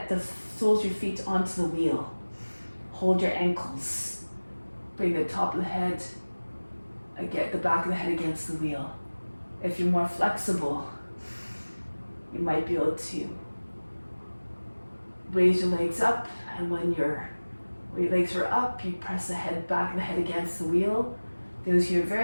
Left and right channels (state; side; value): inverted; both; correlation -1.00